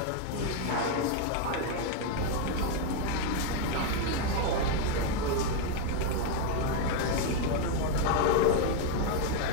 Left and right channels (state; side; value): different; both; correlation 0.01